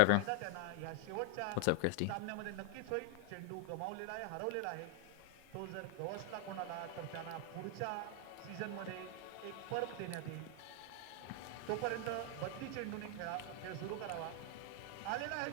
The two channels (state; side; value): different; both; correlation 0.00